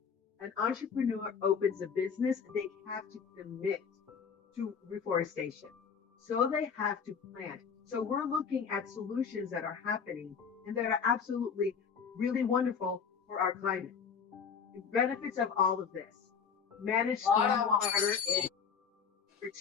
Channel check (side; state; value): right; quieter; 6.5 dB